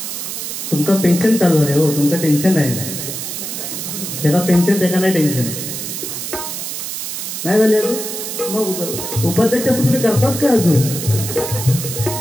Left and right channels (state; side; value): noise; right; hiss, 6 dB below the sound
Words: तुमका पेन्शन चालू आहे हो, तुमचं टेन्शन नाही. त्याला पेन्शन त्याला नाही टेन्शन नाही झाले. मग उपाध्यक्ष तुम्ही करताच का अजून?